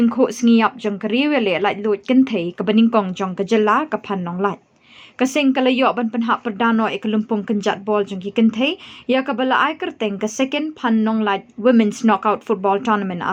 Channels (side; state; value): both; identical; correlation 1.00